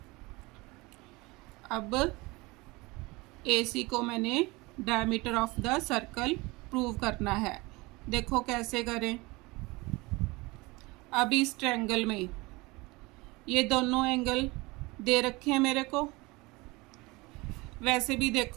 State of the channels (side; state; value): left; quieter; 23.5 dB